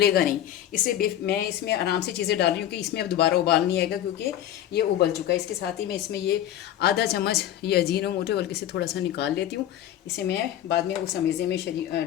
नहीं। इससे मैं इसमें आराम से चीज़ें डाल रही हूँ कि इसमें अब दोबारा उबाल नहीं आएगा, क्योंकि ये उबल चुका है। इसके साथ ही मैं इसमें ये आधा चम्मच ये अजीनोमोटो, बल्कि से थोड़ा सा निकाल लेती हूँ। इसे मैं बाद में उस अमेज़े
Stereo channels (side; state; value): right; quieter; 11.8 dB